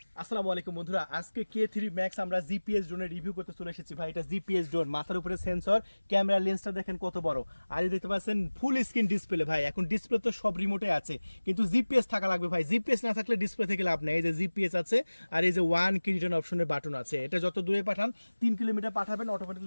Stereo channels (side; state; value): both; inverted; correlation -1.00